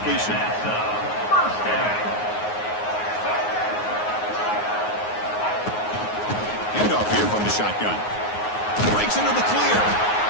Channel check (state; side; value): late; right; 9.5 ms